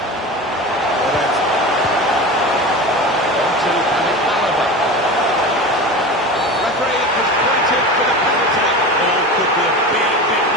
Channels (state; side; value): normal; both; correlation 0.30